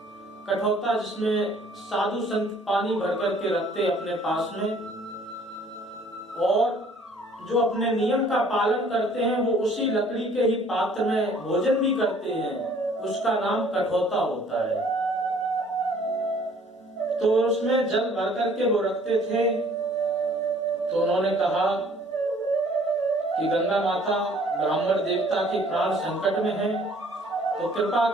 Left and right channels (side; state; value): both; normal; correlation 0.57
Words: कठौता जिसमें साधु संत पानी भर करके रखते अपने पास में, और जो अपने नियम का पालन करते हैं वो उसी लकड़ी के ही पात्र में भोजन भी करते हैं, उसका नाम कठौता होता है। तो उसमें जल भर करके वो रखते थे। तो उन्होंने कहा कि गंगा माता ब्राह्मण देवता के प्राण संकट में हैं, तो कृपा